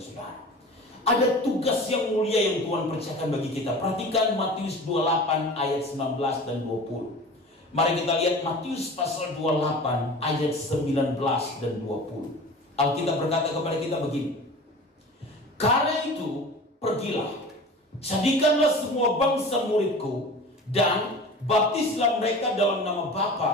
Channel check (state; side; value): normal; both; correlation 0.38